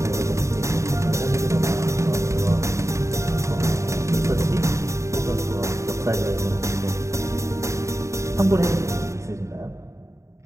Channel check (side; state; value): left; late; 0.14 ms